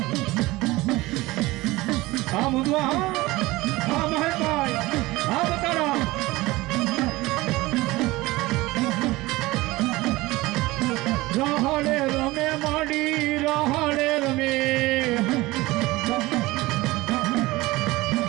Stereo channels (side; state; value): left; quieter; 20.0 dB